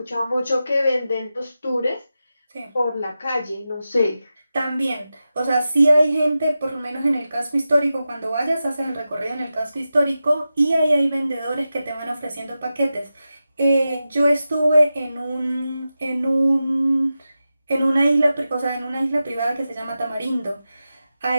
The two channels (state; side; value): inverted; both; correlation -0.92